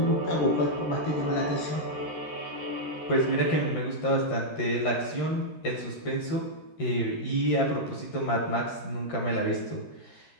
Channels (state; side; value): late; right; 13 ms